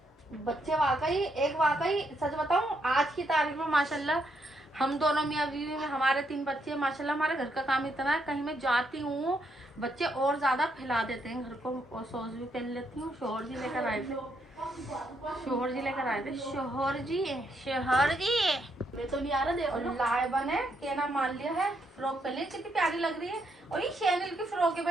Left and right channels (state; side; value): normal; both; correlation 0.76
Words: बच्चे वाकई सच बताऊं, आज की तारीख में माशाल्लाह हम दोनों मियां बीवी में हमारे 3 बच्चे हैं माशाल्लाह। हमारे घर का काम इतना है, कहीं मैं जाती हूँ बच्चे और ज्यादा फैला देते हैं घर को। और सॉस भी पहन लेती हूँ। शोहर जी लेकर आए थे शोहर जी मैं तो नहीं आ रहा। देखो लाइबा ने कहना मान लिया है, फ्रॉक पहन ली, कितनी प्यारी लग रही है। और ये शैनल की फ्रॉक है